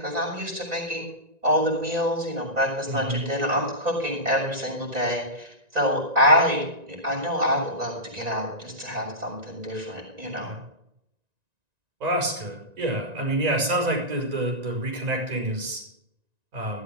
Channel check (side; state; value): left; late; 1.9 ms